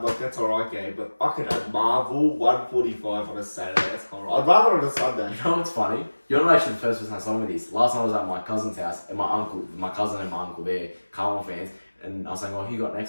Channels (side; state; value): both; inverted; correlation -1.00